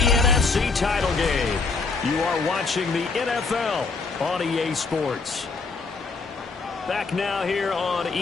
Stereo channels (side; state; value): right; quieter; 4.3 dB